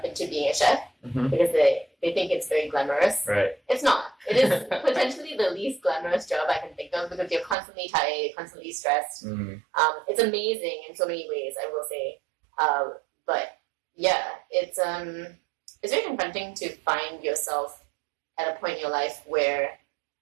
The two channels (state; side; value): drops out; left; at 7.6 s